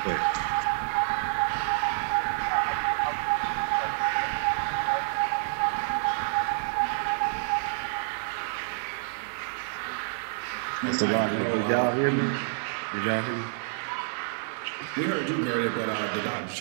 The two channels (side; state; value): left; silent; 57 dB below the other